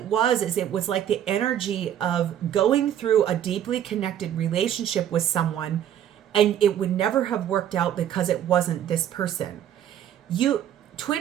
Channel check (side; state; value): left; quieter; 10.4 dB